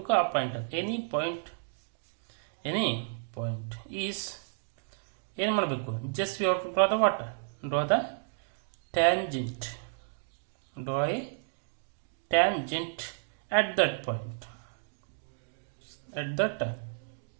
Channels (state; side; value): silent; left; digital silence